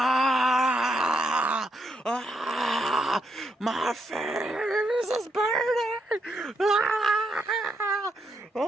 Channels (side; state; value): both; normal; correlation 0.79